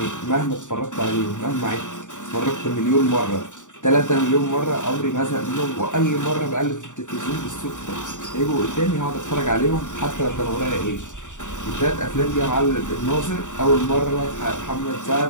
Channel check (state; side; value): late; right; 0.86 ms